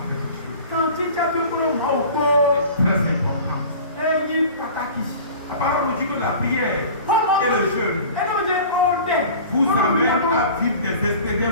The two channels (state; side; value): inverted; both; correlation -0.41